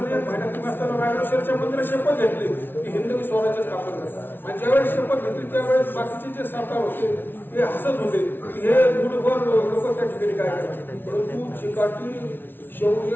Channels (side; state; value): right; late; 0.10 ms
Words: महिन्यात असताना रायगड मंदिरात शपथ घेतली की हिंदवी स्वराज्य स्थापन करायचं. आणि ज्यावेळेस शपथ घेतली त्यावेळेस बाकीचे जे सरकार होते ते हसत होते की हे मूठभर लोक त्या ठिकाणी काय करतात. परंतु चिकाटी,